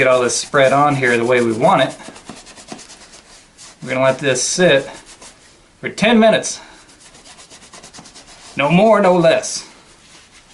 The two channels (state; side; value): identical; both; correlation 1.00